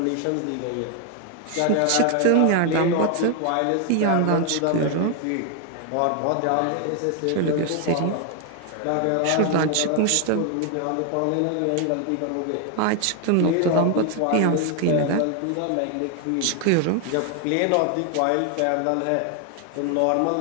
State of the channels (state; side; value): different; both; correlation 0.00